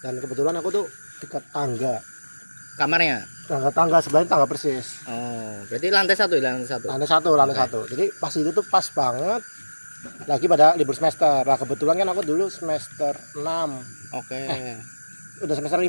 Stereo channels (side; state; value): both; inverted; correlation -1.00